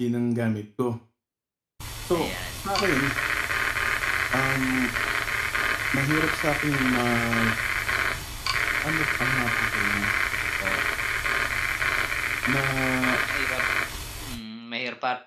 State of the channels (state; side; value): identical; both; correlation 1.00